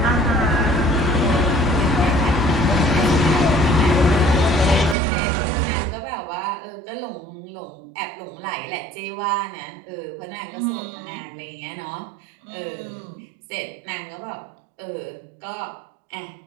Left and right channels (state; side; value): drops out; left; at 5.0 s